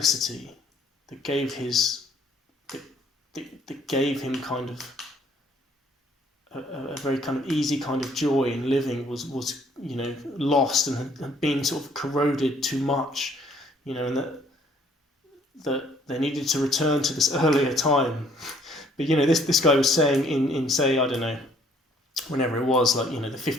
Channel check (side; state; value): both; normal; correlation 0.61